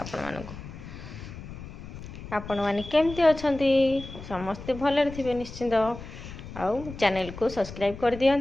आपण माने केमती अछंती समस्ते भलरे थिबे निश्चिंत आउ चैनल को सब्सक्राइब कर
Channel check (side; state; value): left; noise; rumble, 12 dB below the sound